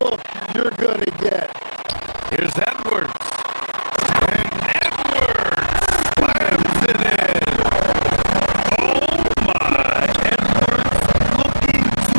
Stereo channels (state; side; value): inverted; both; correlation -1.00